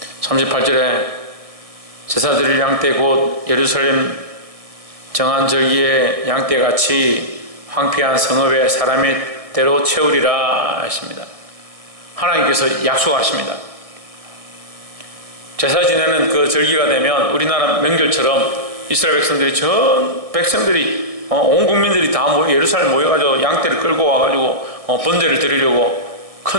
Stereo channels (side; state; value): left; late; 1.7 ms